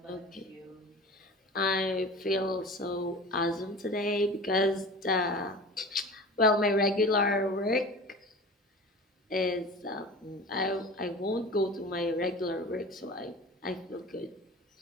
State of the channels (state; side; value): normal; both; correlation 0.37